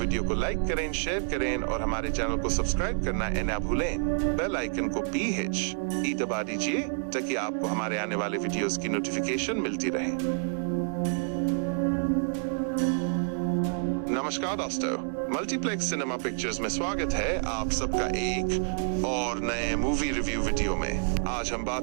को लाइक करें, शेयर करें और हमारे चैनल को सब्सक्राइब करना ना भूलें। बेल आइकन को PHE दबा दीजिए ताकि आपको हमारे आने वाले वीडियोस की नोटिफिकेशन मिलती रहे। नमस्कार दोस्तों, मल्टीप्लेक्स सिनेमा पिक्चर्स में स्वागत है आप सबका एक और नए मूवी रिव्यू वीडियो में। आज हम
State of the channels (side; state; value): left; silent; digital silence